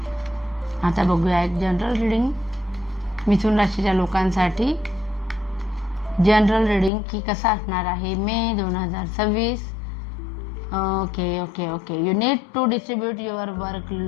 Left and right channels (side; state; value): right; drops out; at 6.9 s